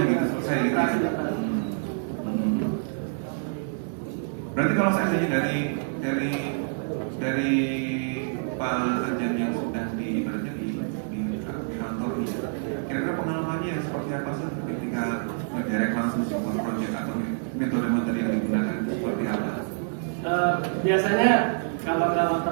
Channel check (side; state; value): left; silent; digital silence